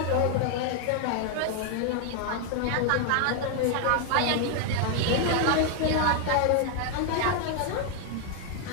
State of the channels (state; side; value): different; both; correlation 0.00